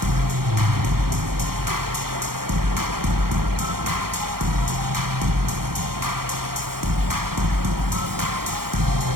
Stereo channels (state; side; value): late; left; 0.93 ms